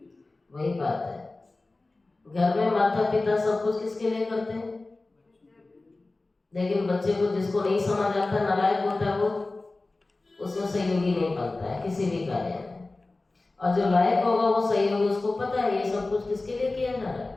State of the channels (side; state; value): right; quieter; 3.2 dB